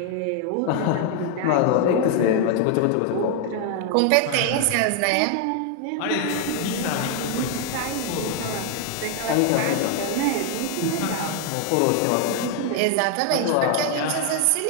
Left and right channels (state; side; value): different; both; correlation 0.00